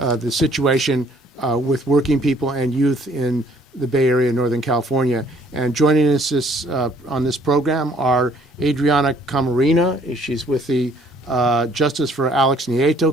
situation with working people and youth in the Bay Area, Northern California. And joining us on this program are Adriana Camarena. She's with the Justice for Alex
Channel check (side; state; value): both; normal; correlation 0.61